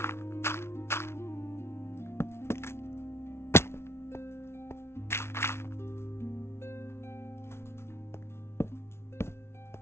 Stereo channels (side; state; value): right; late; 0.12 ms